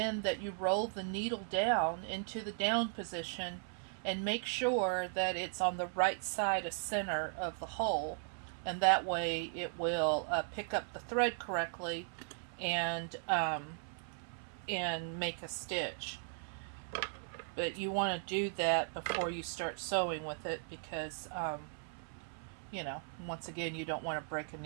that you roll the needle down into the down position and make sure that it's on the right side of center of the hole, and that way it will pick up the thread correctly and make a stitch. But you want to do that before you start sewing with it because you know, once again, you don't want to break a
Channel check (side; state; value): left; silent; 53 dB below the other